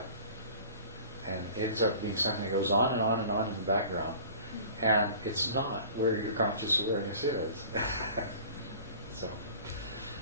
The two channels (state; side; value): inverted; both; correlation -0.44